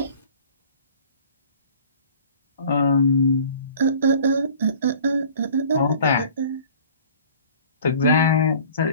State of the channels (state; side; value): inverted; both; correlation -0.48